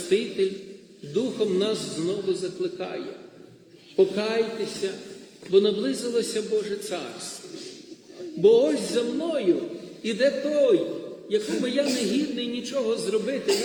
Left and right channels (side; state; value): both; identical; correlation 1.00